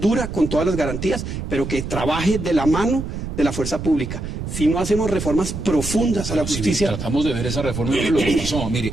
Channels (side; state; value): right; noise; rumble, 6 dB below the sound